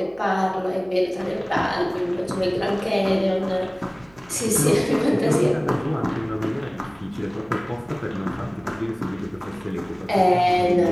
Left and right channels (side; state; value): right; noise; hum, 28 dB below the sound